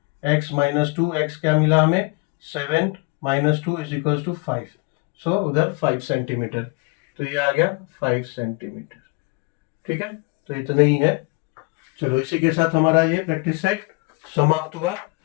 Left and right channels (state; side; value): quieter; right; 27.7 dB